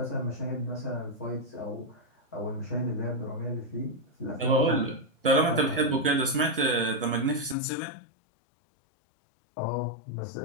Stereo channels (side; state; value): right; drops out; at 7.6 s